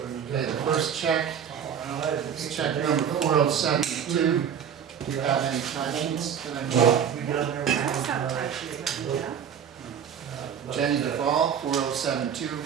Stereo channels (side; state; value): left; quieter; 8.1 dB